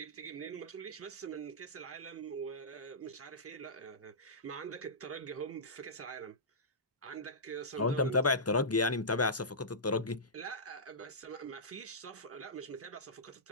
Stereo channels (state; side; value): normal; both; correlation -0.16